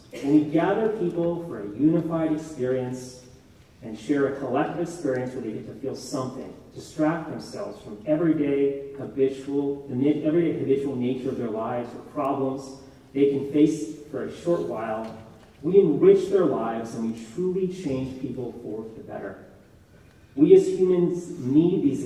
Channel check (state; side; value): identical; both; correlation 1.00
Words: and we gather people for a unified experience and share a collective experience where they get to feel something, distract themselves from everyday habitual nature of their lives or problems they can face for a short while. We enrich their lives and we truly change people for the better. We as humans need these